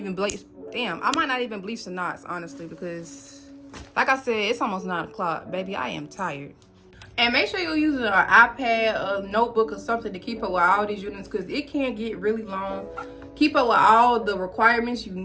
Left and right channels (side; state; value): both; identical; correlation 1.00